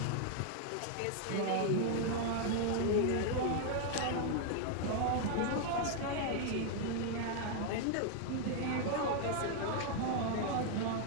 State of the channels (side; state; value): both; different; correlation 0.00